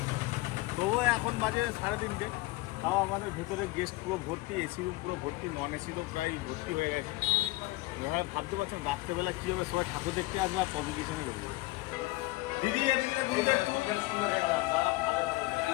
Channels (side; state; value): right; quieter; 19.9 dB